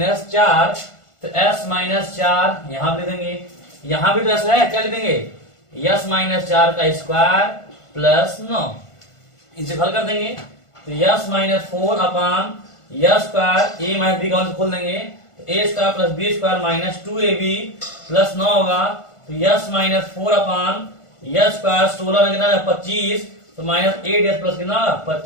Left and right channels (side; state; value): right; late; 1.5 ms